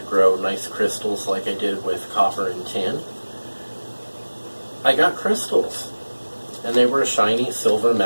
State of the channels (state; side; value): inverted; both; correlation -1.00